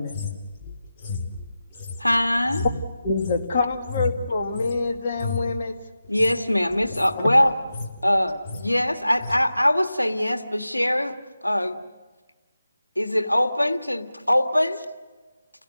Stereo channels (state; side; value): inverted; both; correlation -0.93